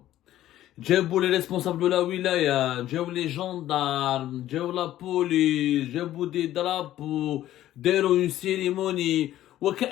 جابوا les responsables de la wilaya, جابوا les gendarmes, جابوا la police, جابوا des drapeaux, داروا une cérémonie.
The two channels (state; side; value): quieter; right; 13.4 dB